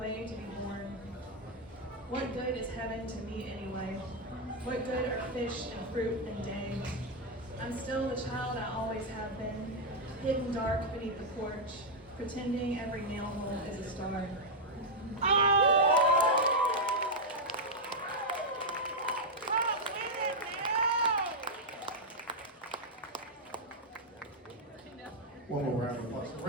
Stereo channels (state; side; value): normal; both; correlation -0.02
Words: to be born. What good is heaven to me anyway? What good are fish and fruit and day? I'm still the child I always have been, hidden dark beneath the porch, pretending every nail hole is a star. One more round of applause.